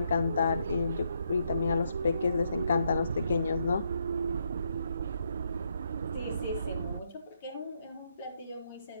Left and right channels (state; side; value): inverted; both; correlation -0.77